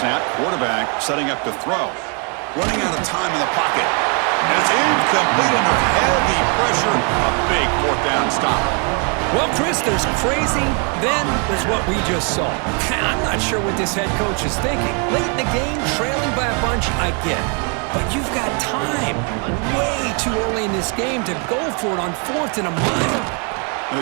Quarterback setting up to throw. Running out of time in the pocket. And it's incomplete under heavy pressure. A big 4th down stop. Well, Chris, there's crazy, then there's what we just saw. I'm not sure what this head coach is thinking. Late in the game, trailing by a bunch, I get it. But you've got time, way too early in this game, to go for it on 4th and a mile. Going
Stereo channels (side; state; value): left; quieter; 37.3 dB